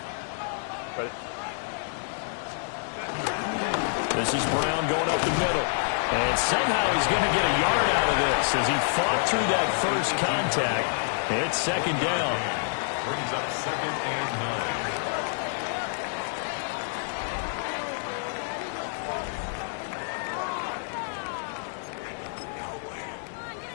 This is Brown going up the middle. And somehow he's going to get a yard out of this as he fought through that first contact. It's second down. Brings up 2nd and 9.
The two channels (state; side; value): silent; right; digital silence